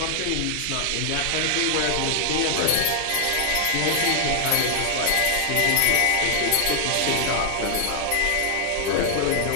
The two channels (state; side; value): different; both; correlation 0.00